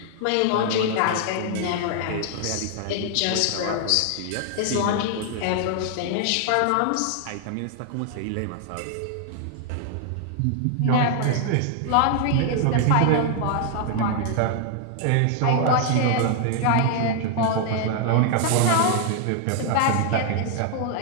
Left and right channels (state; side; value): different; both; correlation 0.00